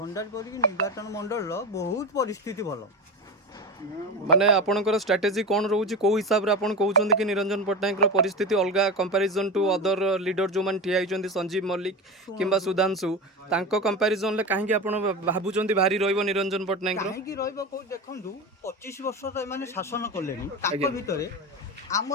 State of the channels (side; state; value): both; normal; correlation 0.23